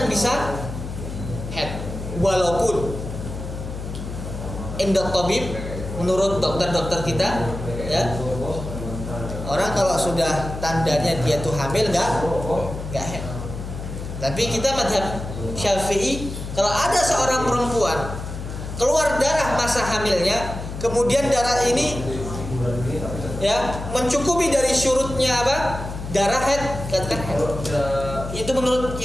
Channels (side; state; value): left; noise; hum, 8 dB below the sound